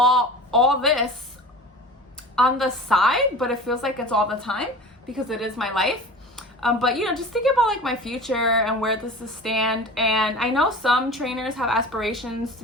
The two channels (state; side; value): normal; both; correlation 0.37